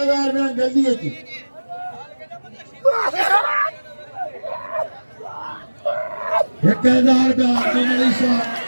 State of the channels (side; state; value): both; inverted; correlation -1.00